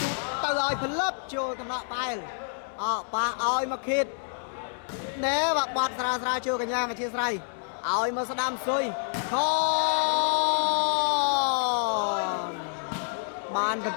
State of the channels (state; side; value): silent; right; digital silence